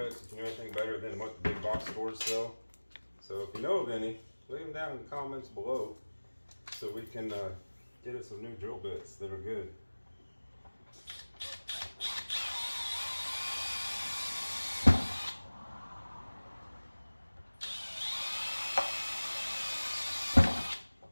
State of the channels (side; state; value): both; inverted; correlation -1.00